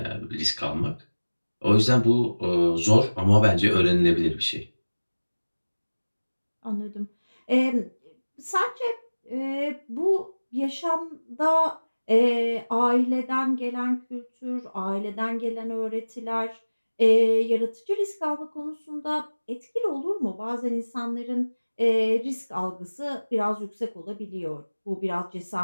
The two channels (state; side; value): inverted; both; correlation -1.00